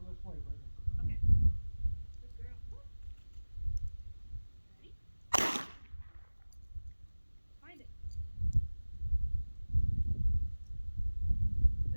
this way, Brittany. Okay. Good girl. Ready? Find it.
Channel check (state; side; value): inverted; both; correlation -1.00